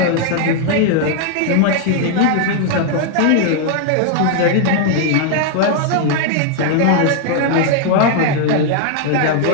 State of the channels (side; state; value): both; different; correlation 0.00